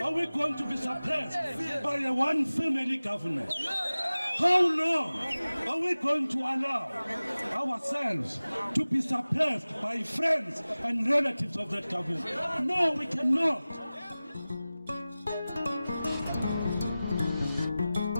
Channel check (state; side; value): inverted; both; correlation -0.97